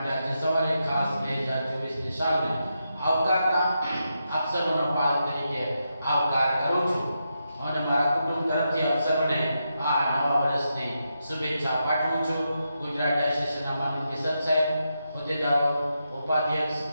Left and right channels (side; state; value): both; inverted; correlation -0.85